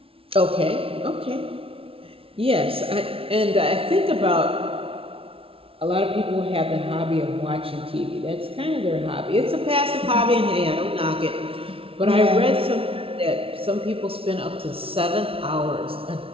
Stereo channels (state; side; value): late; left; 0.26 ms